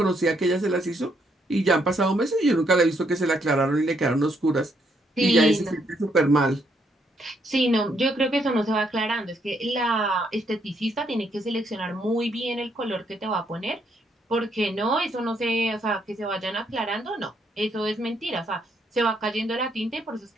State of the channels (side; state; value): both; normal; correlation 0.73